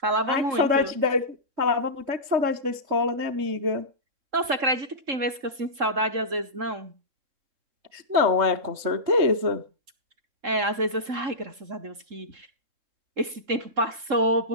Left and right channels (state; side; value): late; left; 3.7 ms